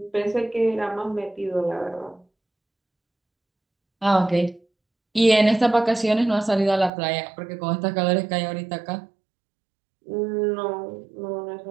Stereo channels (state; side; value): drops out; left; at 6.9 s